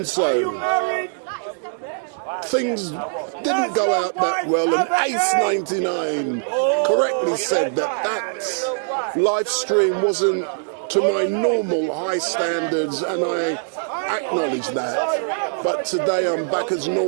so, things didn't go out that well, and Ace99 correctly said that LiveStream wasn't to my normal high standards, and I acknowledge that. But today I'm back as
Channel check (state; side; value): silent; left; digital silence